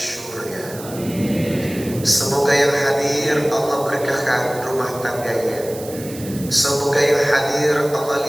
Semoga yang hadir Allah berkahkan rumah tangganya. Semoga yang hadir Allah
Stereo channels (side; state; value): right; noise; hiss, 15 dB below the sound